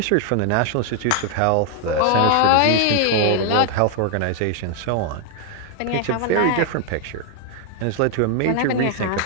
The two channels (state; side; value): different; both; correlation 0.00